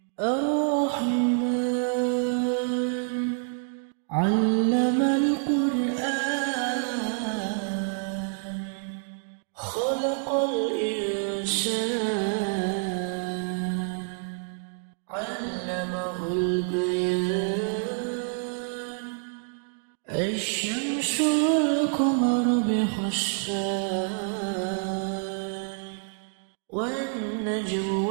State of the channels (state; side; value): silent; left; 60 dB below the other